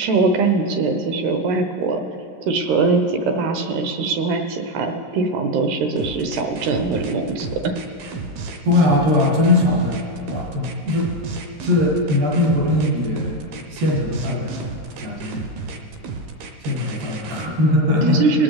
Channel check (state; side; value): late; left; 13 ms